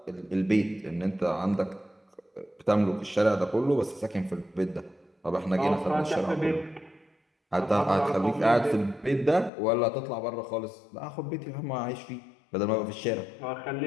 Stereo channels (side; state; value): right; drops out; at 9.5 s